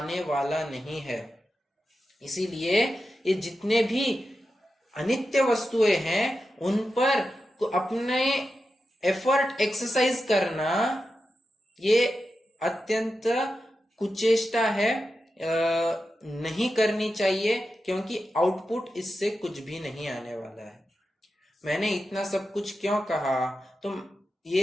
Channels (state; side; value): normal; both; correlation 0.90